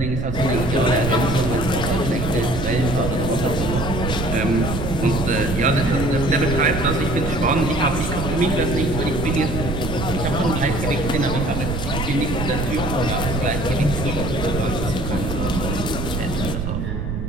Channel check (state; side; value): noise; right; rumble, 4 dB below the sound